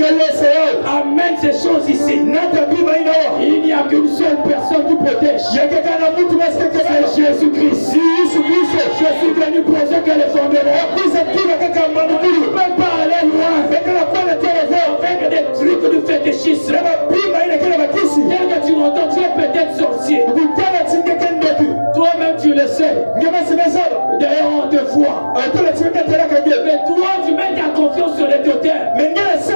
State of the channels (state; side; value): inverted; both; correlation -1.00